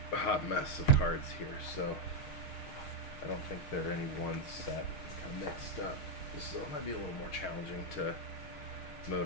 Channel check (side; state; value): right; late; 6.4 ms